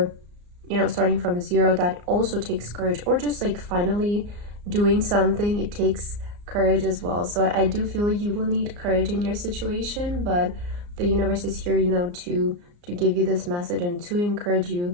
starting from zero. That also takes courage. Or just like finally doing something, it takes courage as well. So I do feel you will need courage in your situation, but the universe is here, to give you this message and to encourage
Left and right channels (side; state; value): left; late; 34 ms